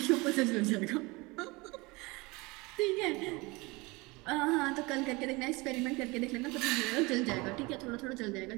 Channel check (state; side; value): quieter; left; 24.6 dB